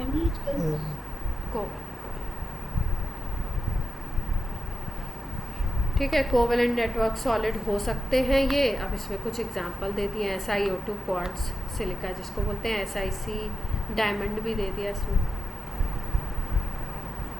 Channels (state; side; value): normal; both; correlation 0.91